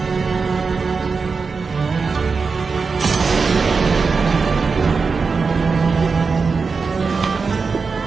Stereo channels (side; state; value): left; quieter; 4.8 dB